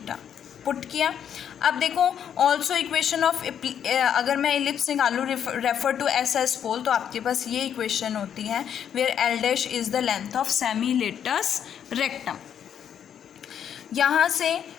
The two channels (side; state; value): right; quieter; 8.8 dB